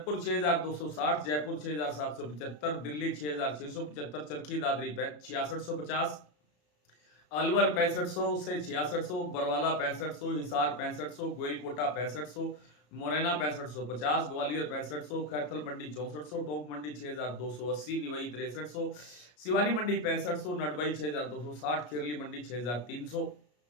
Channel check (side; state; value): right; late; 33 ms